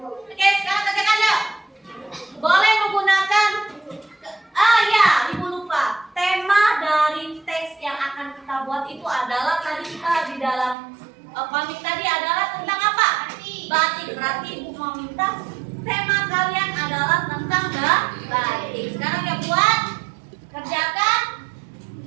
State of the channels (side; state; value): left; drops out; at 10.8 s